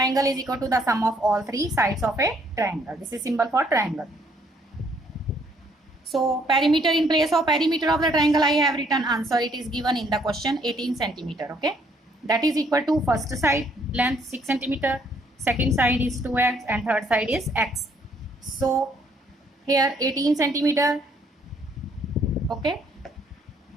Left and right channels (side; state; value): both; normal; correlation 0.66